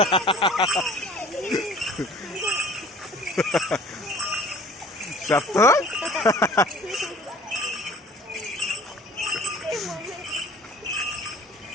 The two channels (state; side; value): normal; both; correlation 0.48